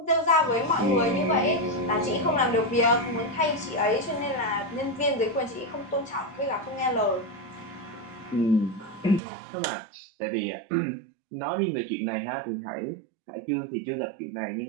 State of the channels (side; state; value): left; drops out; at 9.2 s